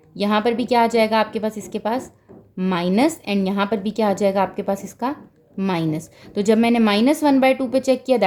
यहाँ पर भी क्या आ जाएगा आपके पास इसके पास माइनस, एंड यहाँ पर भी क्या आ जाएगा आपके पास इसका माइनस। तो जब मैंने -1/2 पे चेक किया,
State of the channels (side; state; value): both; identical; correlation 1.00